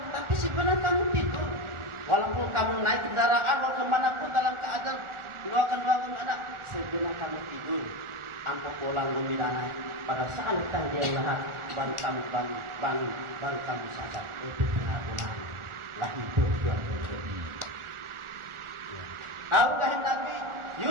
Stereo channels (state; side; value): late; left; 1.4 ms